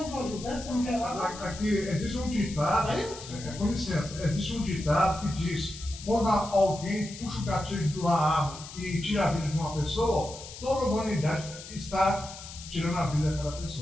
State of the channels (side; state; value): left; noise; hiss, 14 dB below the sound